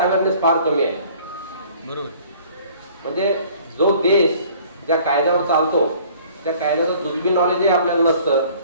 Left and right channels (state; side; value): inverted; both; correlation -0.53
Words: फार कमी आहे. बरोबर. म्हणजे जो देश ज्या कायद्यावर चालतो त्या कायद्याचं जुजबी नॉलेजही आपल्याला नसतं.